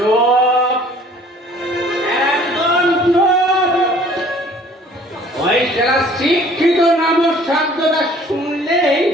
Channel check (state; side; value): normal; both; correlation 0.54